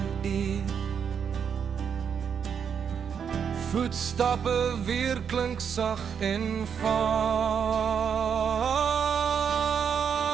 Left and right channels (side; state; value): left; quieter; 7.3 dB